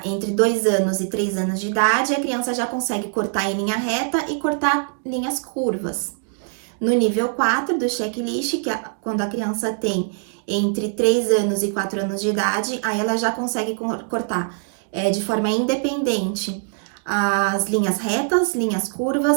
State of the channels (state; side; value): silent; left; 64 dB below the other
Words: entre 2 anos e 3 anos de idade, a criança já consegue cortar em linha reta e cortar linhas curvas. No nível 4 do checklist, que é quando a criança tem entre 3 anos e 4 anos de idade, aí ela já consegue cortar de forma independente as linhas retas, linhas